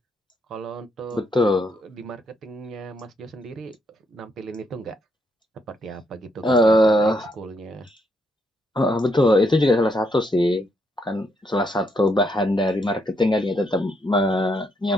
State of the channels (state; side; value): normal; both; correlation 0.76